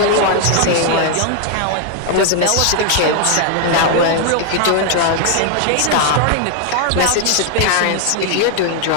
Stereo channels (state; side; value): different; both; correlation 0.00